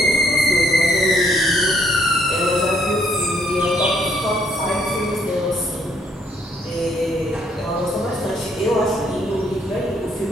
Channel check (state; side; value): normal; both; correlation 0.68